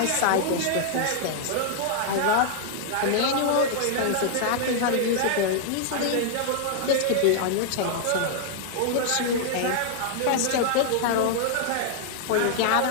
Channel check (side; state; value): both; different; correlation -0.01